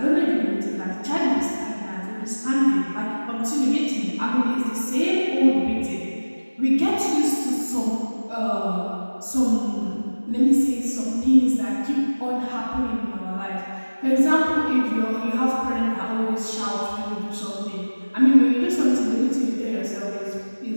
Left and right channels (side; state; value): both; inverted; correlation -1.00